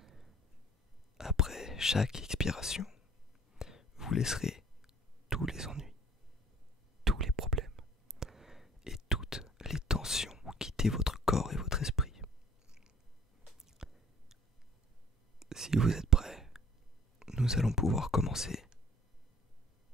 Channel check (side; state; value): both; normal; correlation 0.52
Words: Après chaque expiration, vous laisserez tous les ennuis, tous les problèmes et toutes les tensions quitter votre corps et votre esprit. Si vous êtes prêts, nous allons pouvoir commencer.